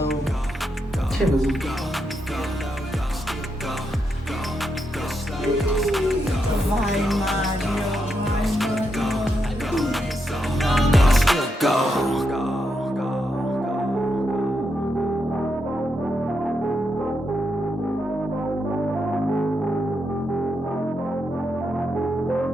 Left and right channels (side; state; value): both; normal; correlation 0.82